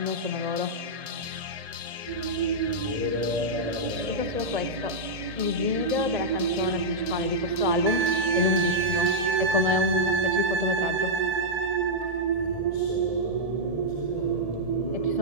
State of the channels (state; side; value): late; left; 1.7 ms